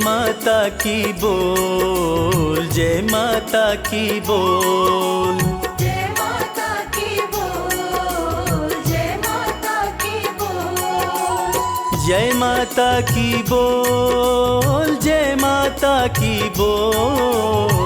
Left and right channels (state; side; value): identical; both; correlation 1.00